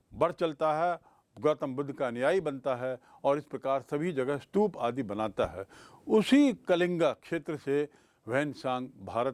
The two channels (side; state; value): both; identical; correlation 1.00